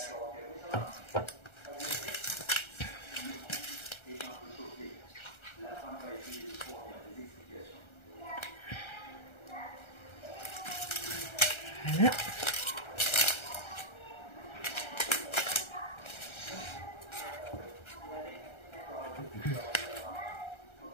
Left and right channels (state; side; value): late; right; 1.3 ms